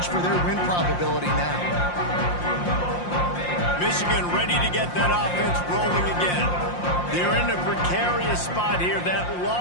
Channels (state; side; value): late; right; 5.7 ms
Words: for their win probability now. Michigan ready to get that offense rolling again. They're in a precarious spot here. That